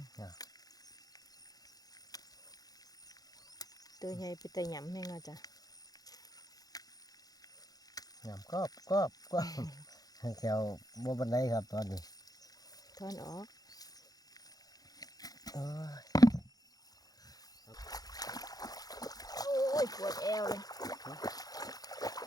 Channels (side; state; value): right; late; 0.18 ms